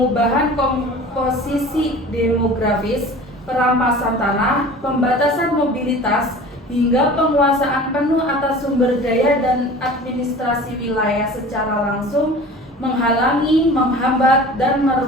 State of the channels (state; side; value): normal; both; correlation 0.40